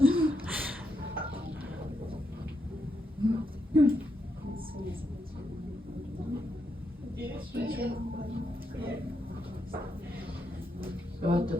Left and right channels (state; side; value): normal; both; correlation 0.81